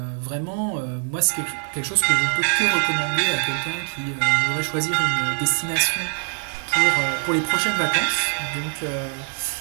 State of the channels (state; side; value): silent; left; 63 dB below the other